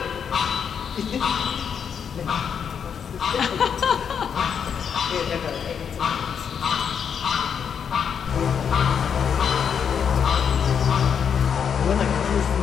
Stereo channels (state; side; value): quieter; right; 7.4 dB